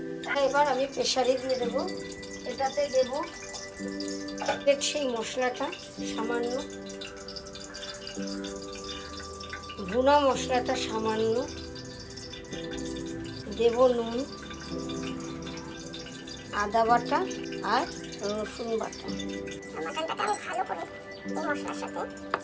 এবার আমি প্রেসারে দিয়ে দেব। এটাতে দেব সেই মশলাটা সামান্য, ভুনা মশলাটা সামান্য, দেব নুন, আদা বাটা আর রসুন বাটা। মাটনটাকে আমি ভালো করে এই মশলার সাথে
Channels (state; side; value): identical; both; correlation 1.00